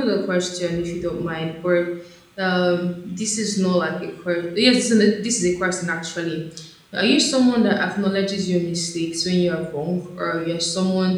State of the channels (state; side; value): identical; both; correlation 1.00